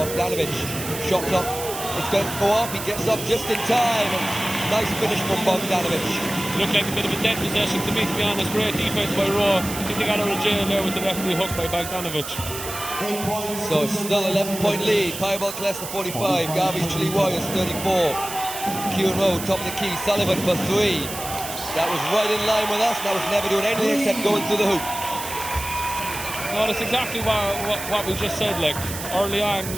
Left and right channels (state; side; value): noise; right; hiss, 8 dB below the sound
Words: Shot clock. It's going to go up. He gets up just in time. And nice finish from Bogdanovic. Looked like a bit of a dead possession to me, to be honest. Great defense by Rowe. I think they got out of jail there with the referee hook by Bogdanovic. So it's still 11-point lead. Pyrobel Killester 45. Garvey Tralee Warriors 34. Kieran Rowe top of the key. Sullivan for 3. That was right in line with us. That was never doing anything except going through the hoop. No, that's exactly what we just said. Like, early on